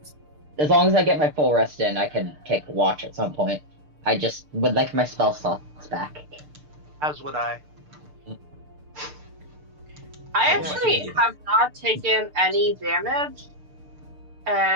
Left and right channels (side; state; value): left; late; 6.7 ms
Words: As long as I get my full rest in, I can take watch at some point. I just would like my spell slots back. As would I. I Yeah, actually yeah. have not taken any damage,